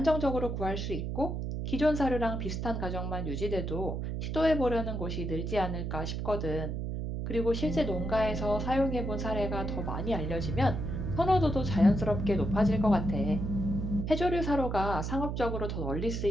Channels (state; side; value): noise; right; hum, 3 dB below the sound